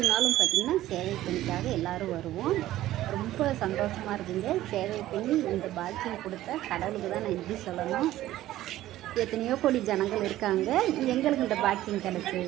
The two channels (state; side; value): quieter; left; 14.6 dB